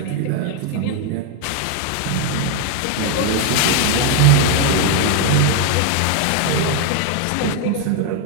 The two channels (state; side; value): different; both; correlation 0.01